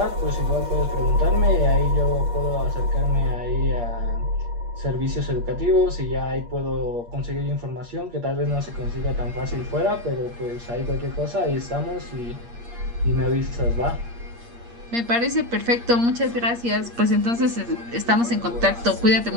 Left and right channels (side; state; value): left; late; 8.5 ms